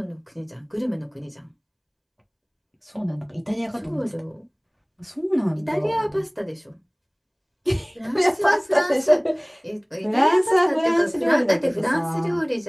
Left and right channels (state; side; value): identical; both; correlation 1.00